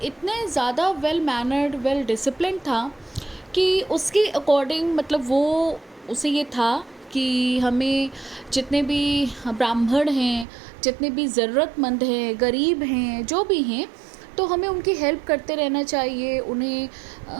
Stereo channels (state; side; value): drops out; left; at 10.5 s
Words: इतने ज़्यादा वेल मैनर्ड, वेल डिसिप्लिन था कि उसके अकॉर्डिंग, मतलब वो उसे ये था कि हमें जितने भी ब्राह्मण हैं, जितने भी ज़रूरतमंद हैं, गरीब हैं, जो भी हैं, तो हमें उनकी हेल्प करते रहना चाहिए।